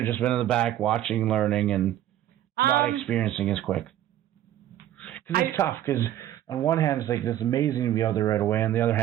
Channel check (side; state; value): left; quieter; 12.4 dB